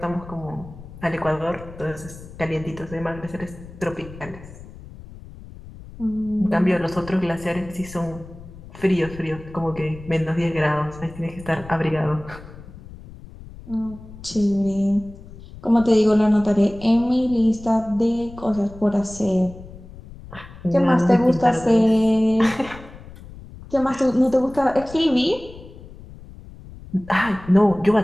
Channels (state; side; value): noise; left; rumble, 17 dB below the sound